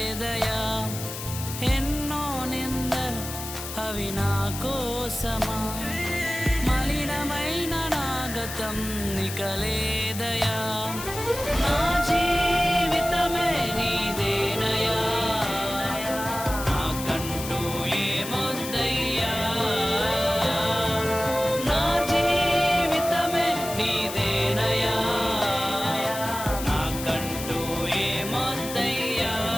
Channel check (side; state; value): left; noise; hiss, 9 dB below the sound